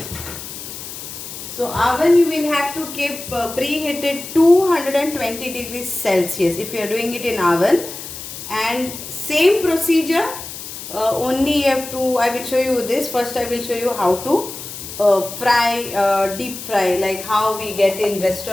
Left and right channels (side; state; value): left; noise; hiss, 10 dB below the sound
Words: So oven you will have to keep preheated 220 degrees Celsius if you are doing it in oven. And same procedure, only you have to, I will show you this. First I will show you how to fry, deep fry, like how we get in